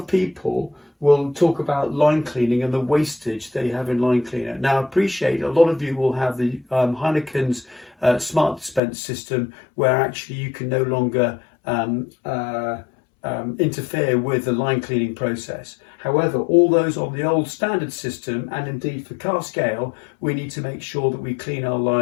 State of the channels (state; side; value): drops out; right; at 8.8 s